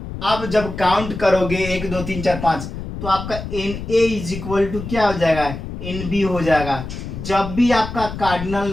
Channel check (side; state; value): left; noise; rumble, 8 dB below the sound